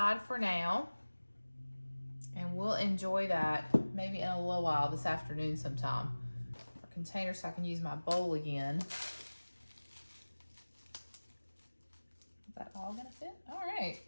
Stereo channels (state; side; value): inverted; both; correlation -1.00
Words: for now. And we'll enjoy that maybe in a little while this afternoon sometime. Our container so I can use my bowl again. Is that all gonna fit? All right,